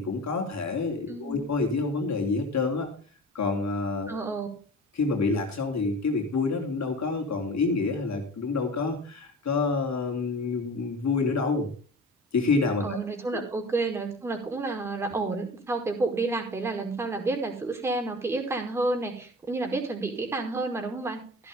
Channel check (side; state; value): both; normal; correlation 0.37